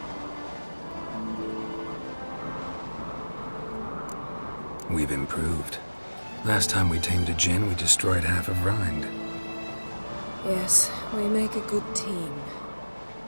We've improved. Last time we tamed a Jinn, we destroyed half of Rind. Yes, we make a good team.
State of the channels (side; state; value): both; inverted; correlation -1.00